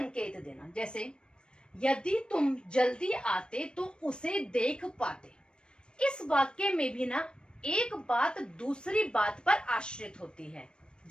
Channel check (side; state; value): right; late; 0.053 ms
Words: देना। जैसे यदि तुम जल्दी आते तो उसे देख पाते। इस वाक्य में भी ना एक बात दूसरी बात पर आश्रित होती है।